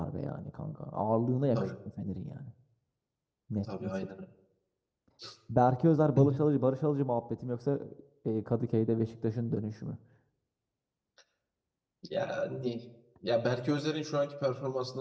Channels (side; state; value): both; identical; correlation 1.00